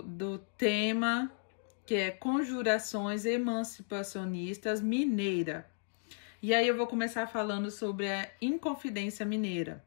tema que é Conjurações Emancipacionistas Mineira. E aí eu vou começar falando sobre a Inconfidência Mineira,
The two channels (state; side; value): silent; right; digital silence